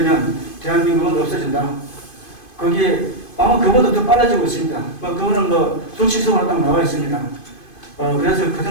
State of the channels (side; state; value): right; late; 2.5 ms